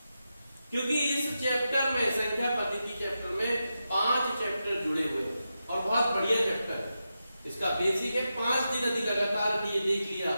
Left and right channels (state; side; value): inverted; both; correlation -0.89